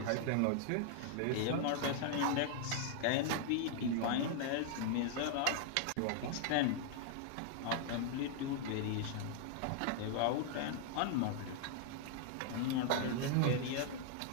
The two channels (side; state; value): both; different; correlation 0.00